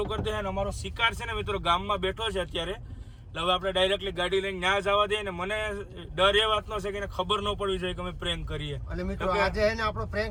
કરી દે. અને અમારો શિકાર છે ને મિત્રો ગામમાં બેઠો છે અત્યારે. હવે આપણે ડાયરેક્ટલી ગાડી લઈને ન્યા જવા દઈએ. ને મને ડર એ વાતનો છે કે એને ખબર ન પડવી જોઈએ કે અમે પ્રેન્ક કરીએ. અને મિત્રો આજે હે ને આપણો પ્રેન્ક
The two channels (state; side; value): identical; both; correlation 1.00